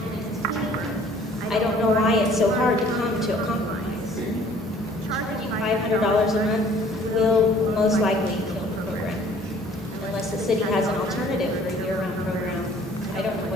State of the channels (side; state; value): both; normal; correlation 0.55